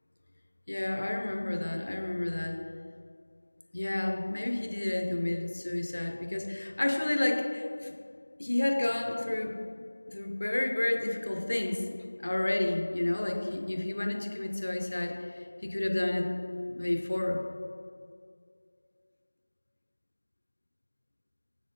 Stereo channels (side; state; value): both; inverted; correlation -1.00